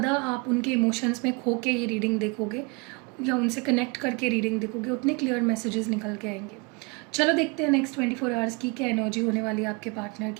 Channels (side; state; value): left; quieter; 29.4 dB